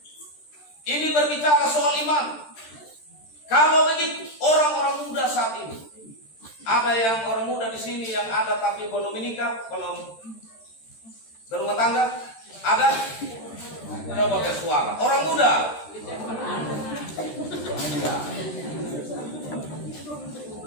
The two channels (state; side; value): late; right; 13 ms